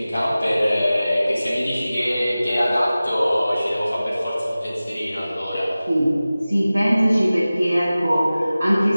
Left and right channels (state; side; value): inverted; both; correlation -0.97